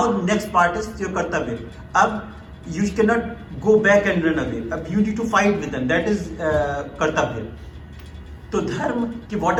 next part is your kartavya. Ab you cannot go back and run away. Ab you need to fight with them. That is kartavya. So dharma,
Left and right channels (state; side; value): identical; both; correlation 1.00